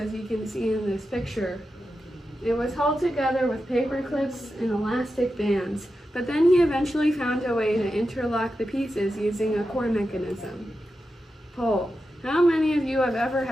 you can see in this picture. It was held together with paper clips and elastic bands, but then he eventually found a way to interlock the pieces using a core mechanism. Poll: how many of you have ever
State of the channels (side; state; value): both; normal; correlation 0.90